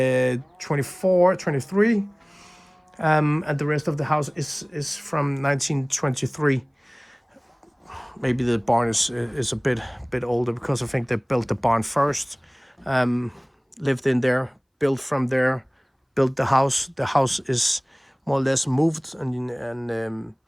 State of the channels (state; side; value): identical; both; correlation 1.00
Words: 23, and the rest of the house is from 1923. Maybe the barn is a bit older because I think they built the barn first, lived in there, built from there, built the house. The house is more or less moved and